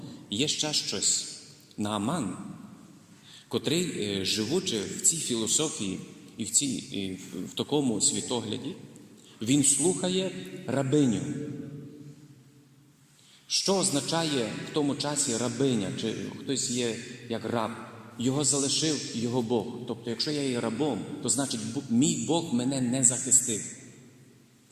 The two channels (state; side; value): identical; both; correlation 1.00